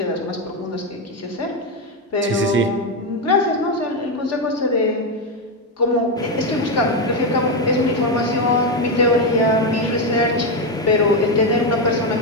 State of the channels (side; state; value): both; normal; correlation 0.08